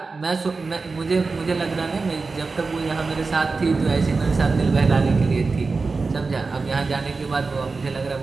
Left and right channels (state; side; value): quieter; left; 4.1 dB